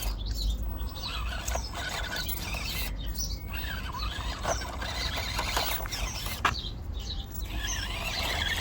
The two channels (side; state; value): both; identical; correlation 1.00